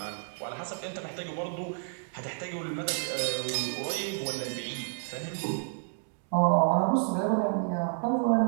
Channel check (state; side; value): silent; left; 58 dB below the other